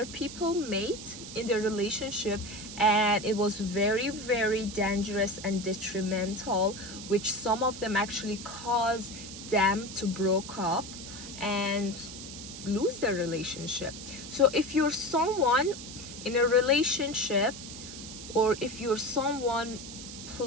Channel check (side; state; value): right; noise; hiss, 12 dB below the sound